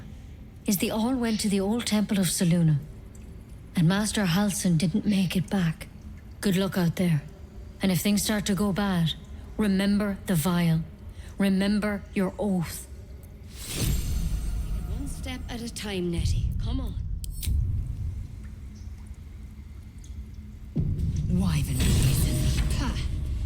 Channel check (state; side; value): identical; both; correlation 1.00